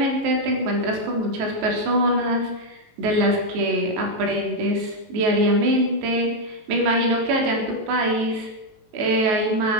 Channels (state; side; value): late; left; 18 ms